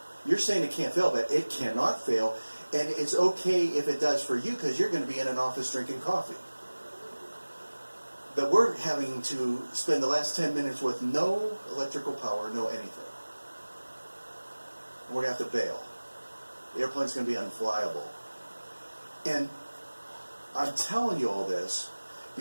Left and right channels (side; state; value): both; inverted; correlation -1.00